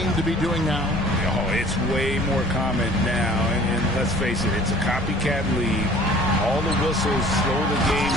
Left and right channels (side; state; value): both; normal; correlation 0.50